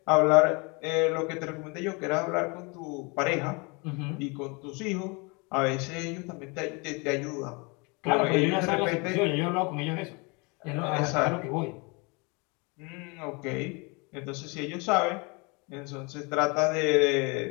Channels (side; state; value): right; quieter; 29.7 dB